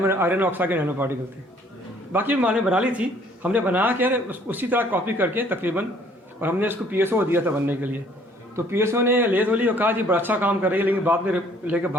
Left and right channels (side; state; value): both; normal; correlation 0.59